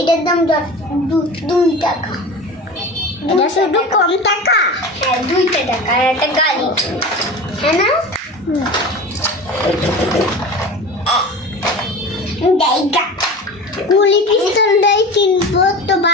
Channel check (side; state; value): both; normal; correlation 0.33